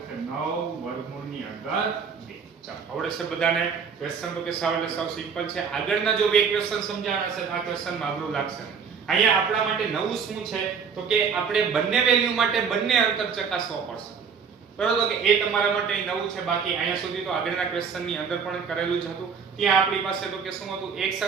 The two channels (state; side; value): quieter; left; 6.2 dB